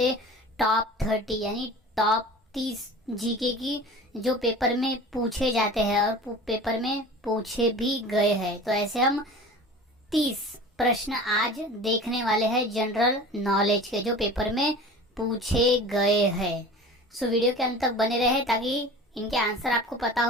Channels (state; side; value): normal; both; correlation 0.39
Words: टॉप 30 यानी टॉप 30 जीके की जो पेपर में पूछे जाते हैं और पेपर में पूछे भी गए हैं। तो ऐसे हम 30 प्रश्न आज देखने वाले हैं जनरल नॉलेज के, जो पेपर में पूछे गए हैं। सो वीडियो के अंत तक बने रहे ताकि इनके आंसर आपको पता